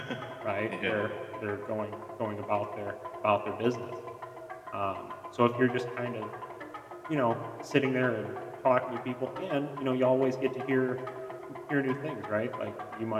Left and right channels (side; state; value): both; identical; correlation 1.00